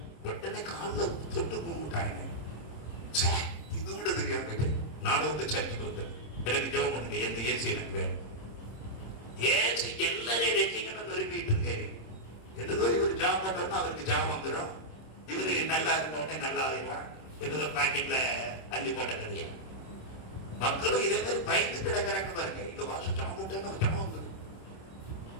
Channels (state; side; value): late; right; 27 ms